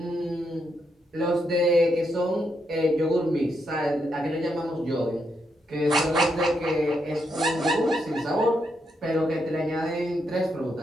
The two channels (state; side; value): normal; both; correlation 0.80